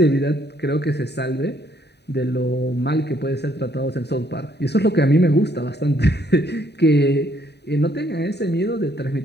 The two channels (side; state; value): right; late; 0.49 ms